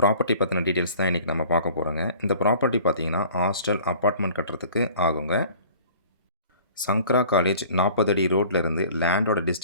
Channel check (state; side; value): inverted; both; correlation -0.48